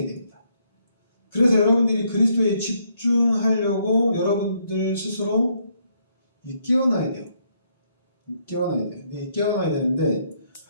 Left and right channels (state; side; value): inverted; both; correlation -0.73